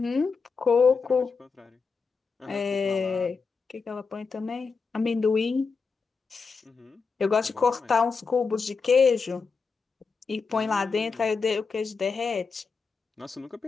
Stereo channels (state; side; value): quieter; right; 4.9 dB